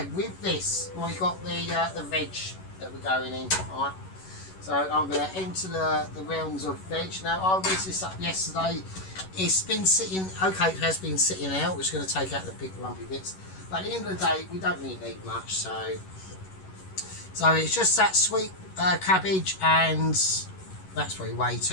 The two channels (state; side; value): late; right; 11 ms